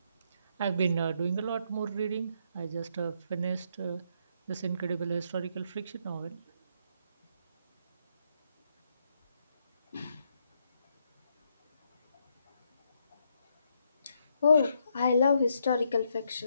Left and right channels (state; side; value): inverted; both; correlation -0.75